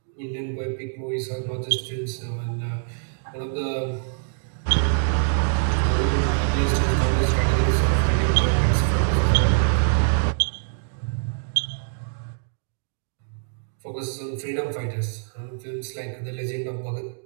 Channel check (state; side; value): silent; left; digital silence